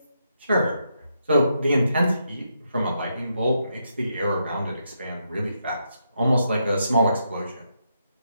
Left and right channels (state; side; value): inverted; both; correlation -0.81